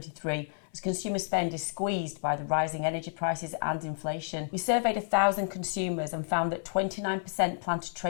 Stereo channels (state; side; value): silent; right; 57 dB below the other